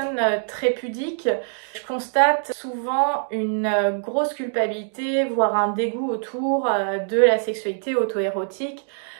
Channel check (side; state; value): left; silent; digital silence